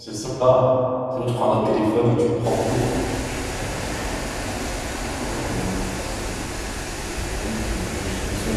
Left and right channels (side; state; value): both; identical; correlation 1.00